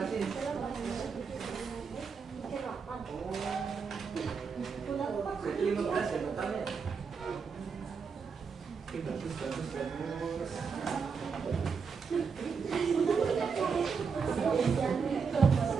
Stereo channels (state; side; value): quieter; left; 5.6 dB